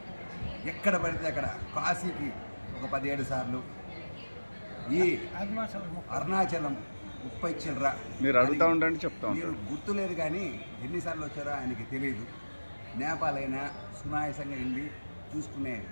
ఎక్కడ పడితే అక్కడ కాశీకి ఒక 17 సార్లు, ఈ అరుణాచలం 30 చిల్లర మీరు అడుగుతూ ఉండండి, చెప్తా మీరు గుర్తులేదు కానీ ఎన్నిసార్లు వచ్చారో ఆయనకి తెలియదు. నేపాల్ అయినా సునాయాసంగా వెళ్ళి చూసుకునే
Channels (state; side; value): inverted; both; correlation -1.00